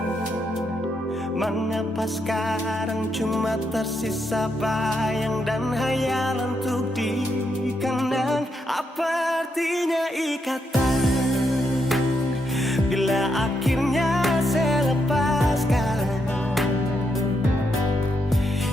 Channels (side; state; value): both; normal; correlation 0.80